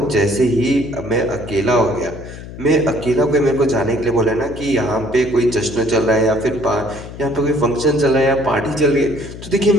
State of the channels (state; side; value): noise; left; hum, 13 dB below the sound